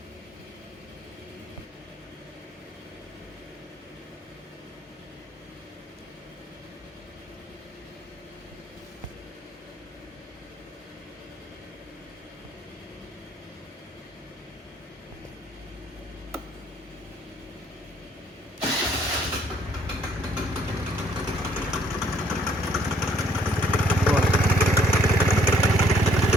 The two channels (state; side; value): normal; both; correlation 0.64